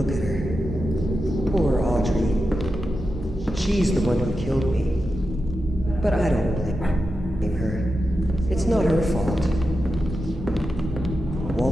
She's the one who killed me. But I don't blame her. It's not her fault.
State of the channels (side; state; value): both; normal; correlation 0.90